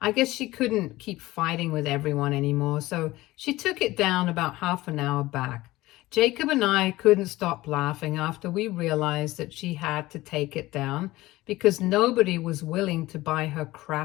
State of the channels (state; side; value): quieter; right; 18.2 dB